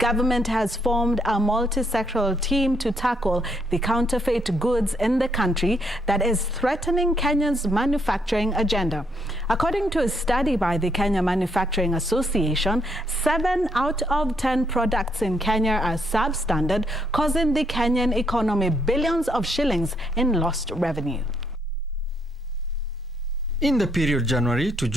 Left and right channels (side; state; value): both; normal; correlation 0.73